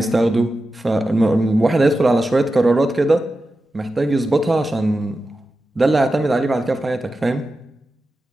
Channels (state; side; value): normal; both; correlation 0.92